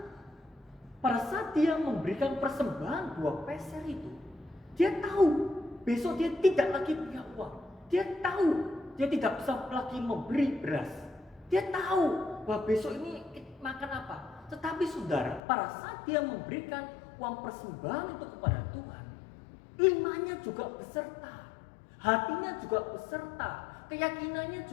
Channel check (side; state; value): right; drops out; at 15.4 s